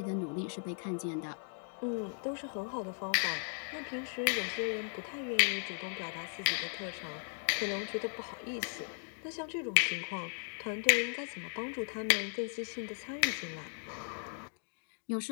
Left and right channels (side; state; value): right; silent; 53 dB below the other